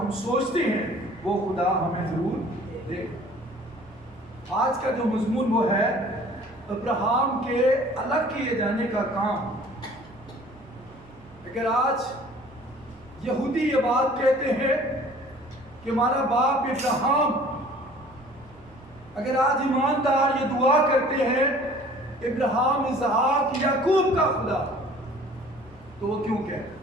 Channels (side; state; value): right; noise; hum, 26 dB below the sound